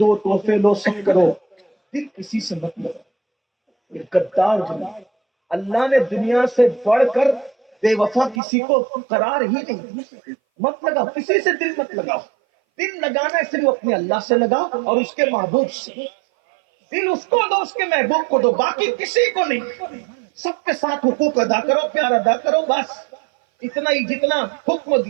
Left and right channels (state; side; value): drops out; left; at 8.4 s